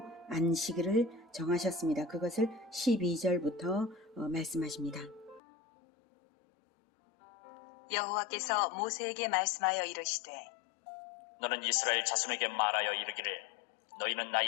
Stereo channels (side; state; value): right; drops out; at 5.4 s